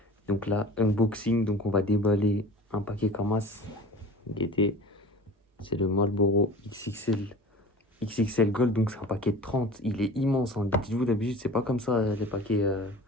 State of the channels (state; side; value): normal; both; correlation 0.39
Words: Donc là, unboxing, donc on va déballer un paquet Kamas. Guettez, c'est le Marlboro XXL Gold, donc c'est un paquet de 30. Il est immense, hein. Dites-vous, d'habitude, c'est pas comme ça, les paquets.